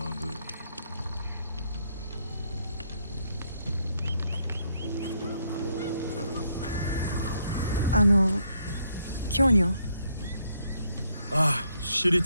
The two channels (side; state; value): both; inverted; correlation -0.73